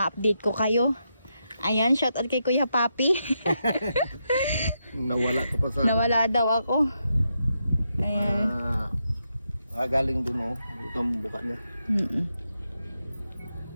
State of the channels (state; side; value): inverted; both; correlation -0.83